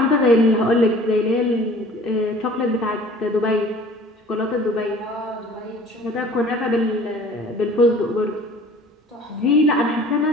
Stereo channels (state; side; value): normal; both; correlation 0.48